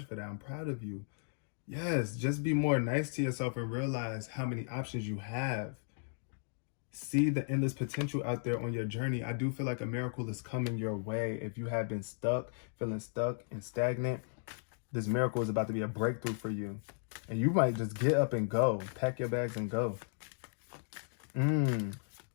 for that. I'm proud of you. Yes, just be more nice to yourself and realize how many options you have. See the endless potential out there on your journey. I do feel like a miracle is coming your way. If you have been stuck, feeling stuck and stagnant, this miracle is about to be a breakthrough for you. And you might just get up and go. Pack your bags and go.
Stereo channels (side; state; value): right; silent; digital silence